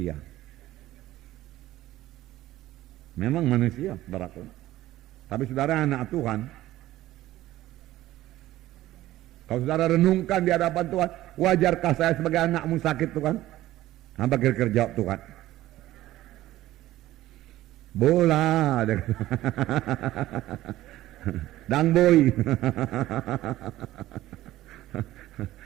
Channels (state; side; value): quieter; left; 15.3 dB